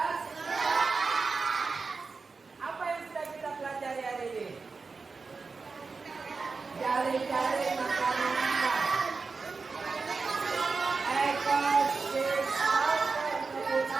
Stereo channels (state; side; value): quieter; left; 4.4 dB